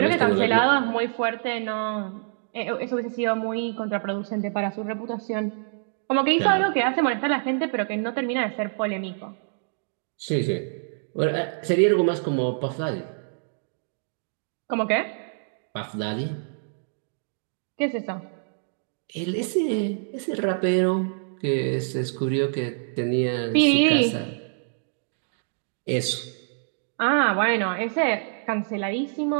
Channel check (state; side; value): silent; left; digital silence